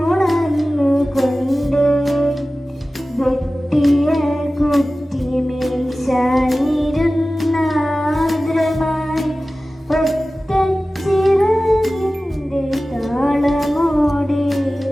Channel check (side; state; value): both; normal; correlation 0.96